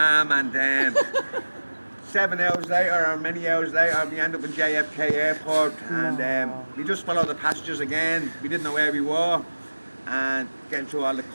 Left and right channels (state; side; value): inverted; both; correlation -1.00